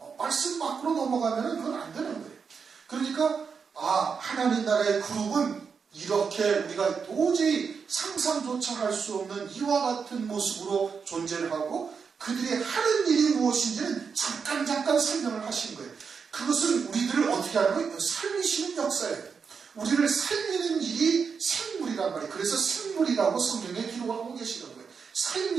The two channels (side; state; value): left; quieter; 5.9 dB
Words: 말씀 밖으로 넘어가면 그건 안 되는 거예요. 그러니까 하나님 나라의 그룹은 이렇게 우리가 도저히 상상조차 할 수 없는 이와 같은 모습으로 존재를 하고 그들이 하는 일이 무엇인지는 잠깐 설명을 하신 거예요. 그것은 우리들을 어떻게 하는 거예요? 살리시는 역사예요. 우리를 살리는 일이 생물이란 말이에요. 그래서 생물이라고 성경에 기록을 하고 계시는 거예요.